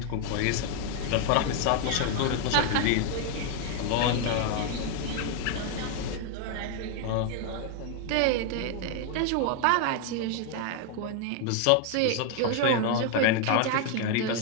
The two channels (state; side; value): different; both; correlation 0.00